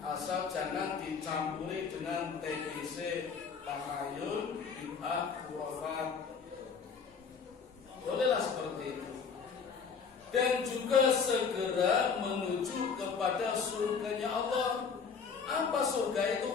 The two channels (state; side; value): quieter; right; 5.8 dB